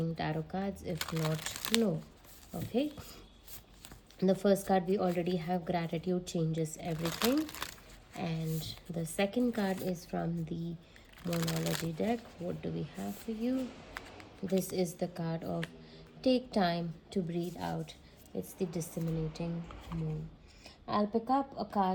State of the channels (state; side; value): identical; both; correlation 1.00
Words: tarot cards. If not, no. Okay. The first card we already have, gratitude changes everything, and the second card is from the Monology deck. What do we have for you? This is the card of take time to breathe out. It's the disseminating moon. I'll pick up